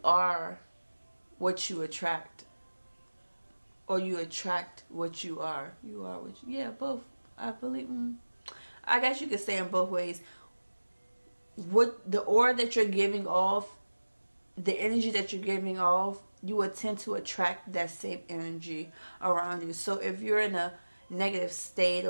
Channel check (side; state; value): both; inverted; correlation -1.00